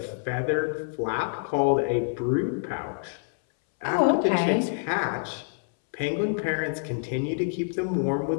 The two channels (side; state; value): right; silent; 60 dB below the other